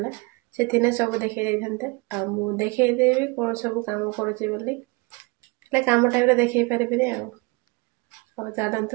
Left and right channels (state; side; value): quieter; left; 27.4 dB